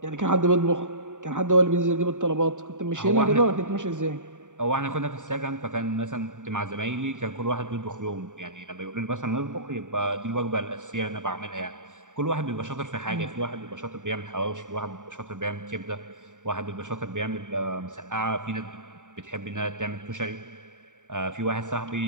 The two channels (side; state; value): left; late; 0.86 ms